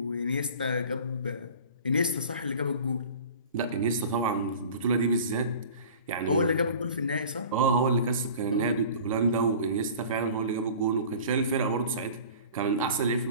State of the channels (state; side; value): inverted; both; correlation -0.42